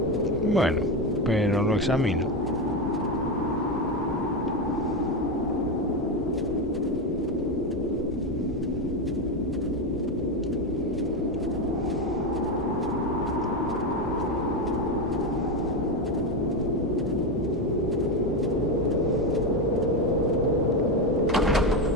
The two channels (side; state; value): both; normal; correlation 0.13